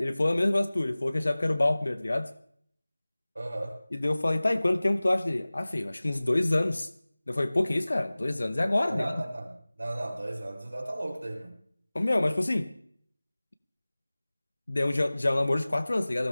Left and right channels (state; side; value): inverted; both; correlation -0.99